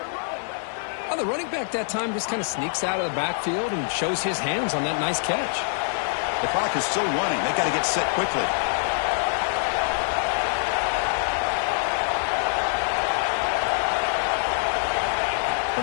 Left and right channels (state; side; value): silent; right; 58 dB below the other